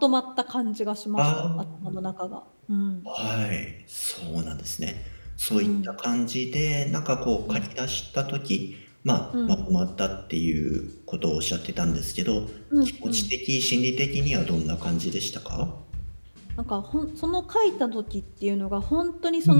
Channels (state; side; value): inverted; both; correlation -1.00